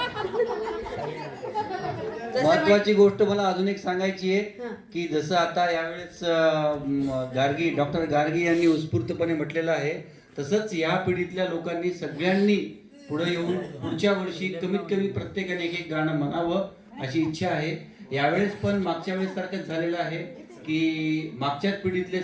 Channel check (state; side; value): identical; both; correlation 1.00